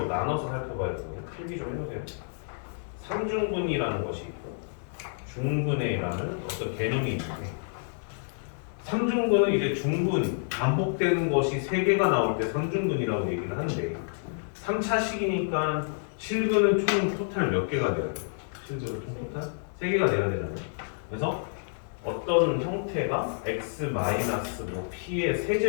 나눠서 살펴봐야 되거든요. 필기 좀 해보세요. 3중근이라는 것이 있고 중근회라는 어떤 개념이 있는데 3중근은 이제 중근, 반복되는 것이 3개가 나올 때 3중근이라고 얘기를 하는데 3차식이니까 실근은 총 토탈 몇 개가 돼야 돼요? 실근은 총 토탈 3개가 돼야 되잖아요. 그래서 어떤 형태가 x 뭐 p의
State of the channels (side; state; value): right; silent; digital silence